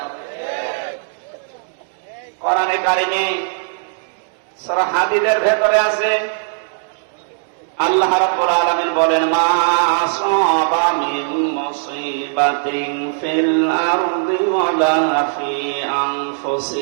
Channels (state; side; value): silent; left; digital silence